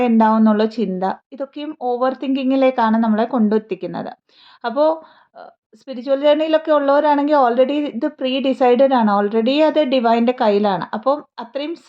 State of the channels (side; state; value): both; identical; correlation 1.00